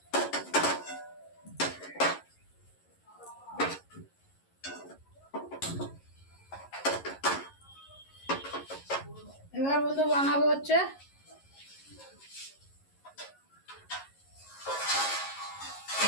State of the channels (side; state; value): right; late; 11 ms